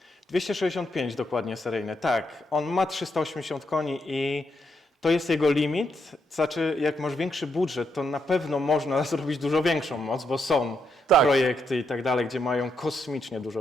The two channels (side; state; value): both; normal; correlation 0.79